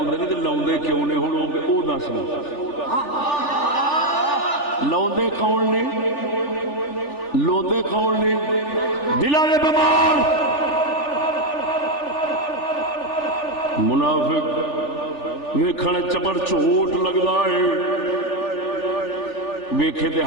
نے تے لاؤندے کیوں نے ہن او دس لاؤندے کون نے لوندے کون نے دلاں دے بیمار منافق ویکھن چپڑ چوٹ لگدا ہے ویکھے تے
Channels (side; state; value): right; late; 3.4 ms